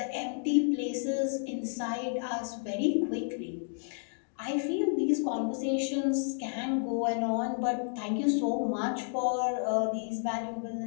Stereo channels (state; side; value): silent; right; digital silence